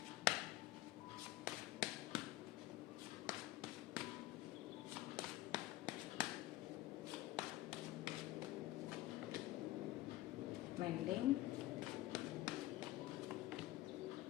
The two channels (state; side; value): quieter; right; 16.4 dB